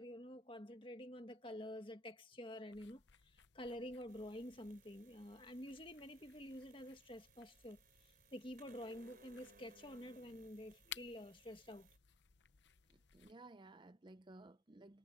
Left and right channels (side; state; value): both; normal; correlation 0.62